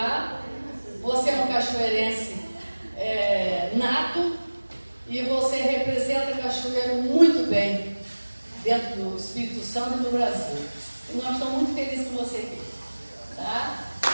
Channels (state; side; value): inverted; both; correlation -1.00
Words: você é um cachoeirense nato e você representa Cachoeiro muito bem dentro do Espírito Santo e do Brasil. E nós estamos muito felizes com você aqui, tá?